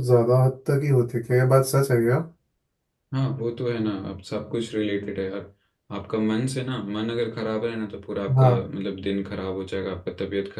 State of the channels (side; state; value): both; identical; correlation 1.00